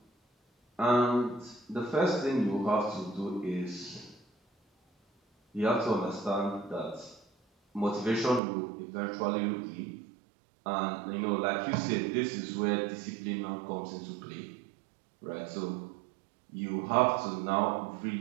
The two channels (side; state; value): left; drops out; at 8.4 s